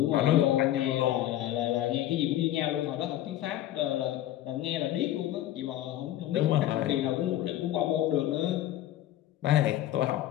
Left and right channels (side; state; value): right; quieter; 13.2 dB